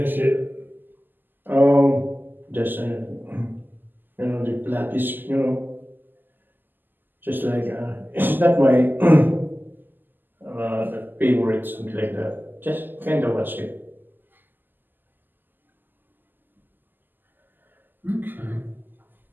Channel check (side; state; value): left; late; 0.090 ms